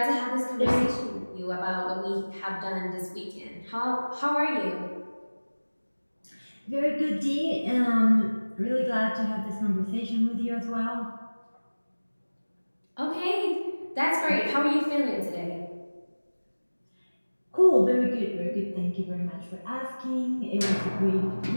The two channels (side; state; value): both; inverted; correlation -1.00